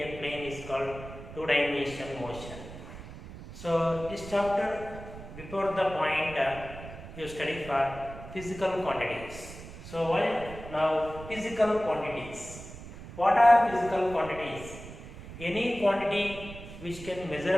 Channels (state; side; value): noise; right; rumble, 13 dB below the sound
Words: plane is called two-dimensional motion. So this chapter before the point you study for physical quantities. So now physical quantities. What are physical quantities? Any quantity which can